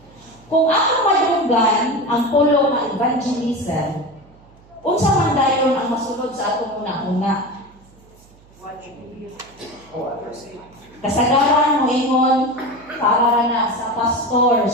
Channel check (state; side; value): noise; right; hum, 27 dB below the sound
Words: Kung ako madunggan ang pulo ng evangelism, unsa man dayon ang masulod sa atong una-una? Kasagaran mo ingon para na sa